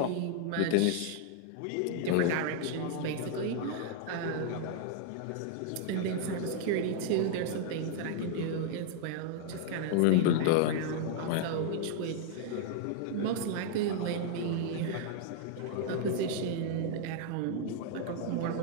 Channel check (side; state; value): both; different; correlation 0.00